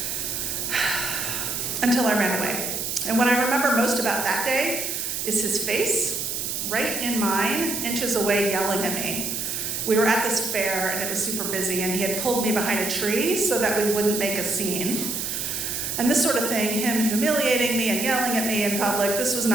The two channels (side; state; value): right; noise; hiss, 3 dB below the sound